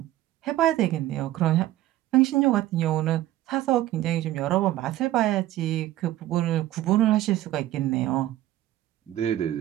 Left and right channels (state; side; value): quieter; left; 14.7 dB